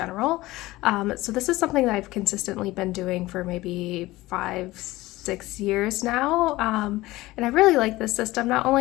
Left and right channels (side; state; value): right; quieter; 18.6 dB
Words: So this is something that I've consistently been doing for maybe 5-6 years now, and I really like this system. Not